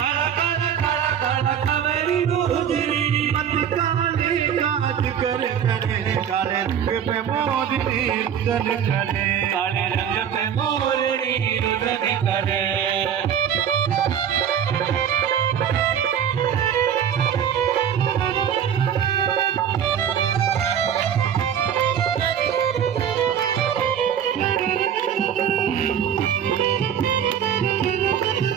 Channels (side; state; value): left; quieter; 8.7 dB